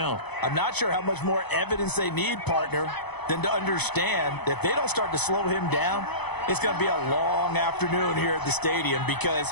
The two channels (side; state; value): right; late; 0.98 ms